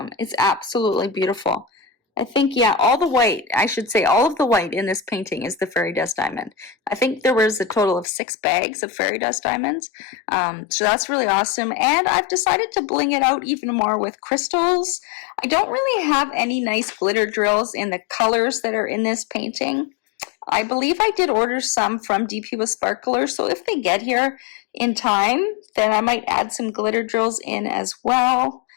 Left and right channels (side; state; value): right; drops out; at 8.1 s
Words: it's absolutely beautiful. I think, yeah, all the white, I should say all of the white in this painting is the fairy dust diamond. I think there was a total of 6 bags of fairy dust diamonds. So that's really awesome. And I've decided to bling it out even more with crystals. I don't really have any nice glitter drills in the colors that are in this painting. I believe I did order some from DP with Sparkler, so if they get here in time, then I might add some glitter drills in as well,